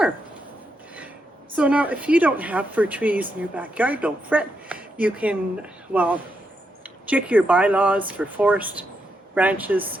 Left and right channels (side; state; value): both; normal; correlation 0.82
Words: So now if you don't have fir trees in your backyard, don't fret. You can, check your bylaws for forest branches